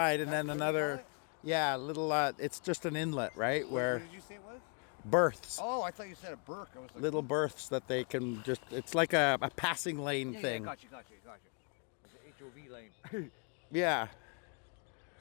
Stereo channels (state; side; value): quieter; right; 38.0 dB